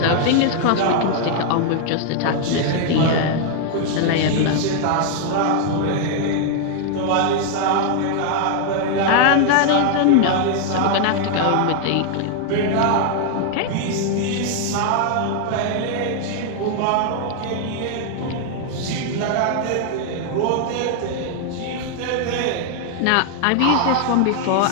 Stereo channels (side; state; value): both; different; correlation 0.00